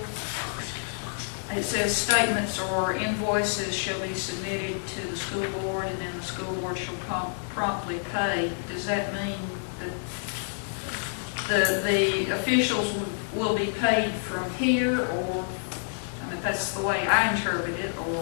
it says statements or invoices shall be submitted to the school board, and then the school board shall promptly pay. Does that mean that the officials will be paid from here, or, I mean, that's the way I interpret it,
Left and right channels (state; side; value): silent; right; digital silence